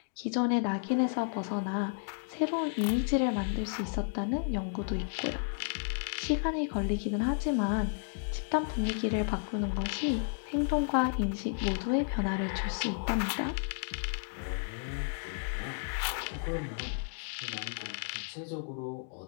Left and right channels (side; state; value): right; silent; digital silence